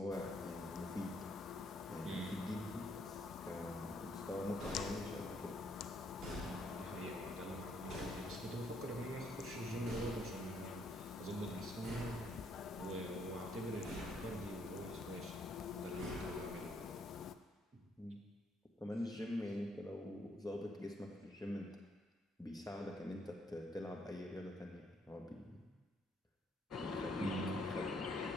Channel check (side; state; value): both; normal; correlation 0.70